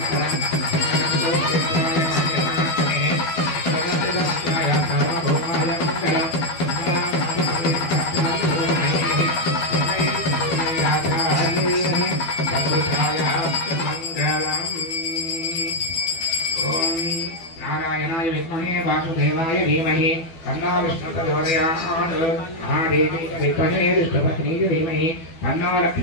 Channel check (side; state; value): right; late; 12 ms